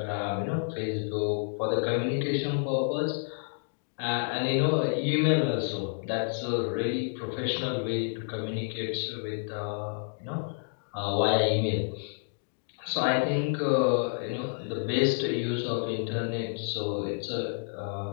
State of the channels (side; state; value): right; silent; 58 dB below the other